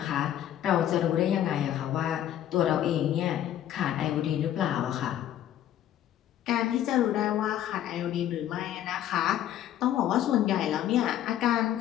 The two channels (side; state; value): right; quieter; 11.5 dB